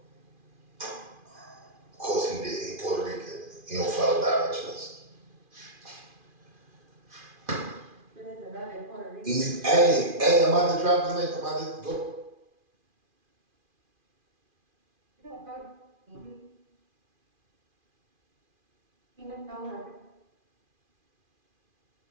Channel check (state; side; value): late; left; 2.4 ms